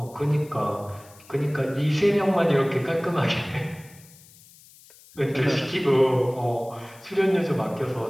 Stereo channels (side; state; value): left; noise; hiss, 24 dB below the sound